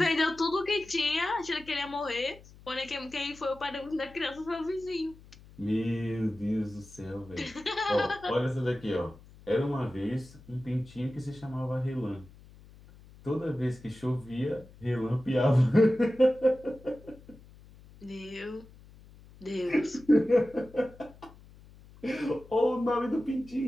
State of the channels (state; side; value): noise; left; hum, 22 dB below the sound